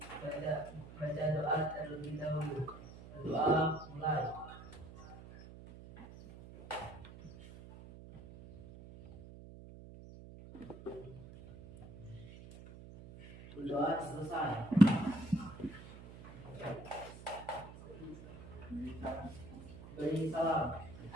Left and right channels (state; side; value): noise; right; hum, 16 dB below the sound